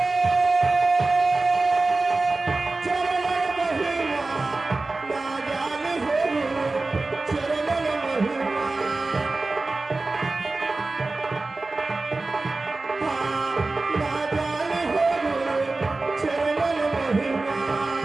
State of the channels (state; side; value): quieter; left; 3.4 dB